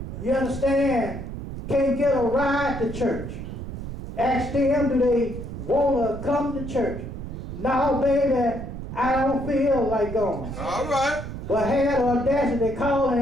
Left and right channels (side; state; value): right; noise; rumble, 8 dB below the sound